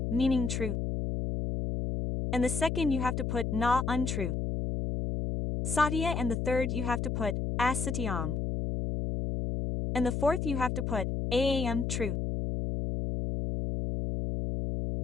meaning truth. And the second you have to put na, untruth. Satya, and the third you have to put asatyam. And the fourth you have to put aam, truth.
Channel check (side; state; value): left; noise; hum, 1 dB below the sound